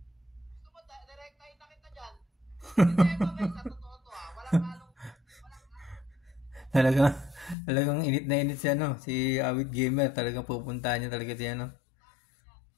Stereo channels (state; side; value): drops out; right; at 7.6 s